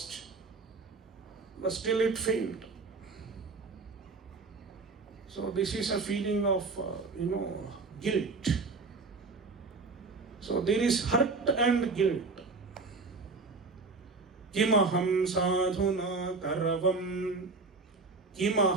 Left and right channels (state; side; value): quieter; left; 4.0 dB